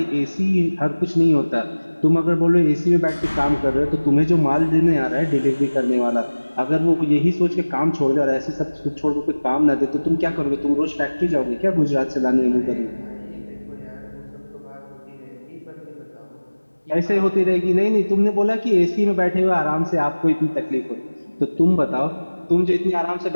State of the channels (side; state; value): both; inverted; correlation -1.00